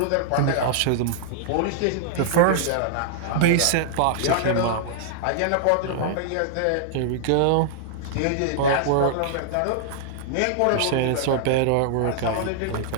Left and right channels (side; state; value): both; different; correlation -0.01